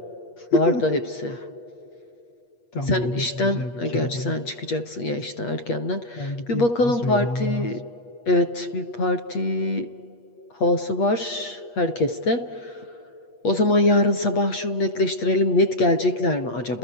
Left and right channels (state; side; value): late; right; 8.4 ms